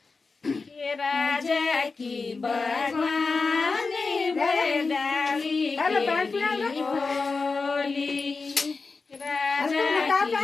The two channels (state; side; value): quieter; right; 4.2 dB